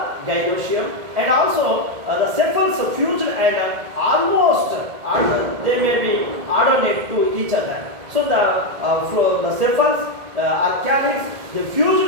gynoecium, and also the sepals fused and almost they may be alternate to each other. So the sepals are calyx, they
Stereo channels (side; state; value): left; late; 1.8 ms